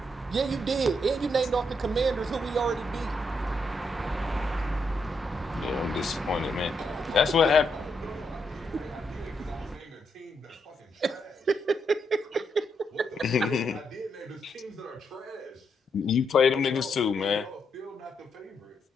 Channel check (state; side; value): normal; both; correlation 0.79